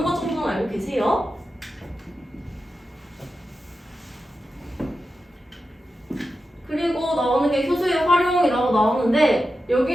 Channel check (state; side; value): normal; both; correlation 0.91